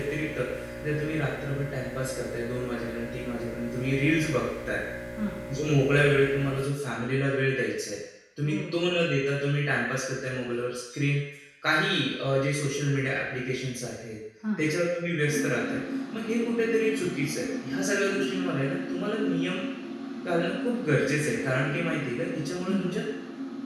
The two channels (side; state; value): both; identical; correlation 1.00